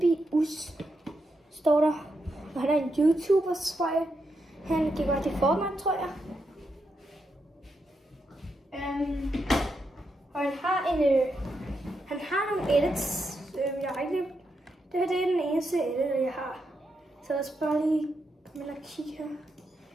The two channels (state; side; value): normal; both; correlation 0.83